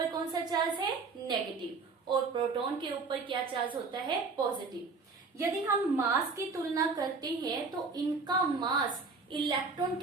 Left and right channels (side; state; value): left; quieter; 4.3 dB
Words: कौन सा चार्ज है, नेगेटिव, और प्रोटॉन के ऊपर क्या चार्ज होता है, पॉजिटिव। यदि हम मास की तुलना करते हैं तो इनका मास इलेक्ट्रॉन